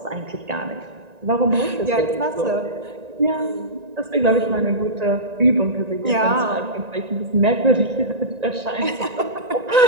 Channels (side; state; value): left; late; 1.9 ms